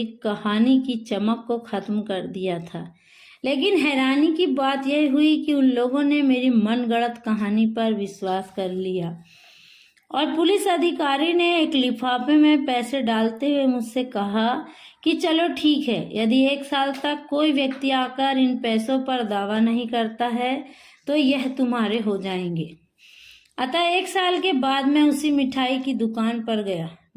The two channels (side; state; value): both; identical; correlation 1.00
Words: कहानी की चमक को खत्म कर दिया था। लेकिन हैरानी की बात यह हुई कि उन लोगों ने मेरी मनगढ़ंत कहानी पर विश्वास कर लिया और पुलिस अधिकारी ने एक लिफाफे में पैसे डालते हुए मुझसे कहा कि चलो ठीक है, यदि 1 साल तक कोई व्यक्ति आकर इन पैसों पर दावा नहीं करता है तो यह तुम्हारे हो जाएंगे। अतः 1 साल के बाद मैं उसी मिठाई की दुकान पर गया।